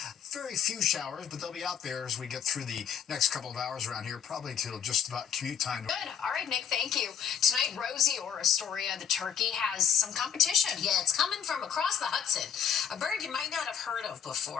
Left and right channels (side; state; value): right; quieter; 8.0 dB